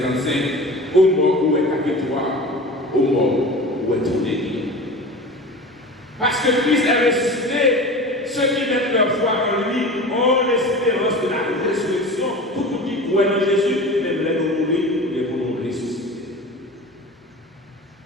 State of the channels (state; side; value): normal; both; correlation 0.35